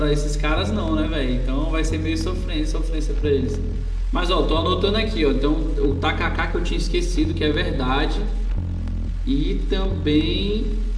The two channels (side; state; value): both; identical; correlation 1.00